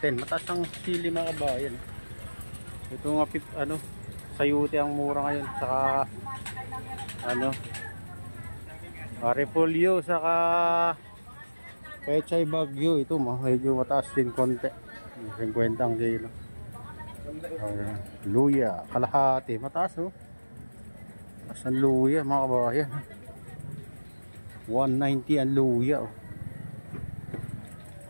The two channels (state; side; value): inverted; both; correlation -1.00